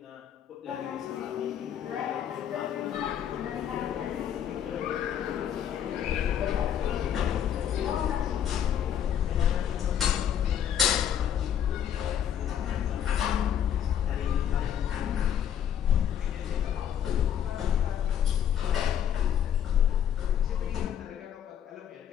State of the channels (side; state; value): right; quieter; 9.5 dB